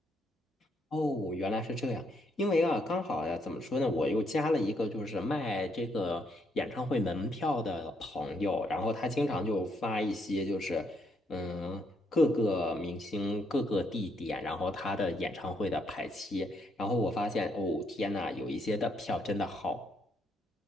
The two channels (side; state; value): both; normal; correlation 0.74